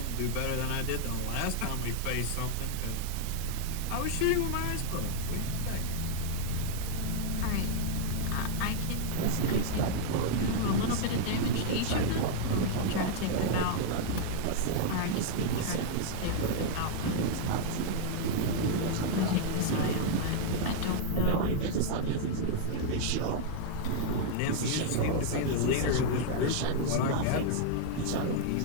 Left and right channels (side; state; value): both; different; correlation -0.01